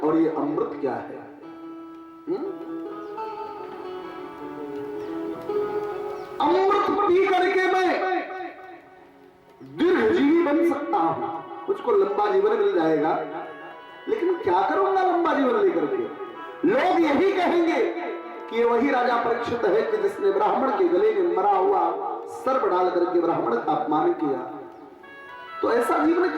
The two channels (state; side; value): identical; both; correlation 1.00